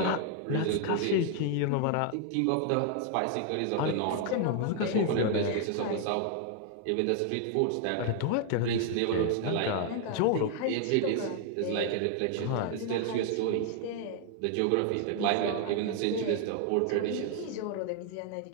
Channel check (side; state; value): both; different; correlation 0.00